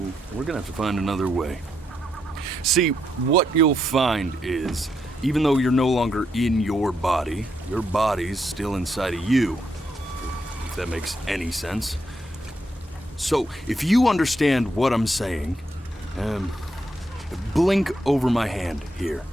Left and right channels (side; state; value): both; normal; correlation 0.79